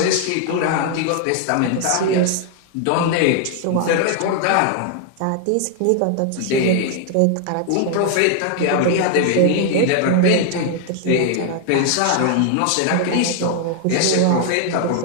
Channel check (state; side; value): different; both; correlation 0.00